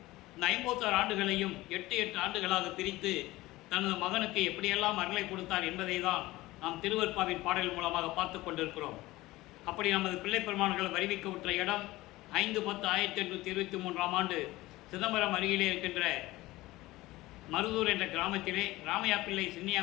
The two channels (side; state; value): right; quieter; 18.6 dB